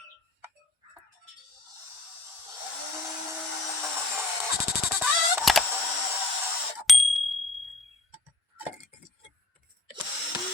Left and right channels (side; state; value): right; quieter; 3.0 dB